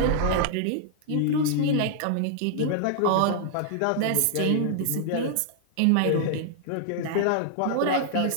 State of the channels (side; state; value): both; different; correlation -0.01